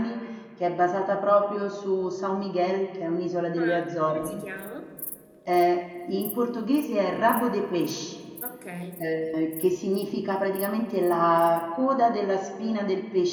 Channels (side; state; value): both; identical; correlation 1.00